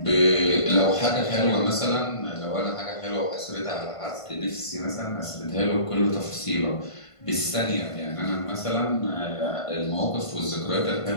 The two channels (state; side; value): late; right; 1.5 ms